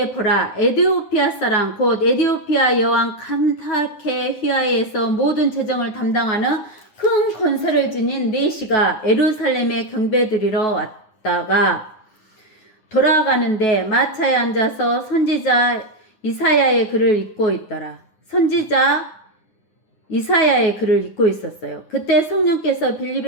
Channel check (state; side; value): late; right; 9.7 ms